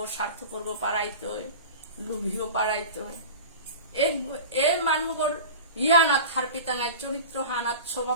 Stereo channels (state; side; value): inverted; both; correlation -0.34